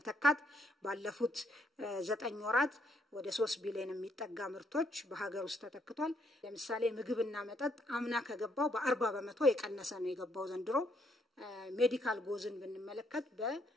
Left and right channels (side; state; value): both; normal; correlation 0.72